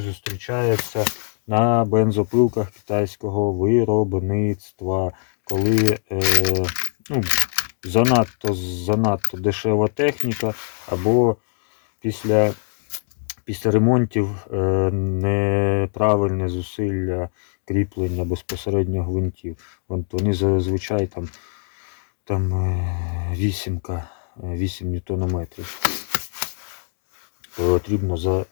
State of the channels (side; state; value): right; silent; digital silence